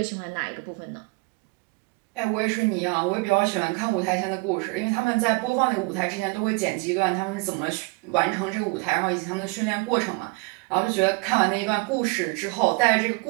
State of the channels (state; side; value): quieter; left; 28.8 dB